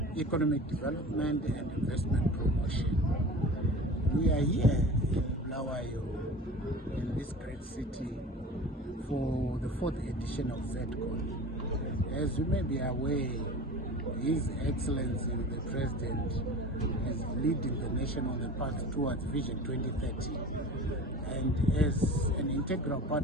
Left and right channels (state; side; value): normal; both; correlation 0.37